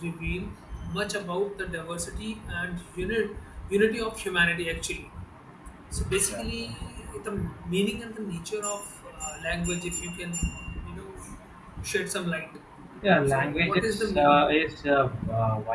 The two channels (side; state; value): both; identical; correlation 1.00